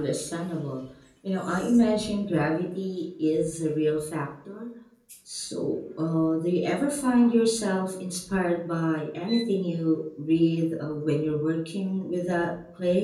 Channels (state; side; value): identical; both; correlation 1.00